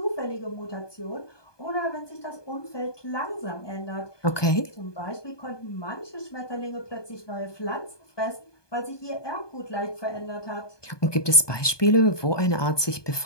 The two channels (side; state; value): right; late; 1.2 ms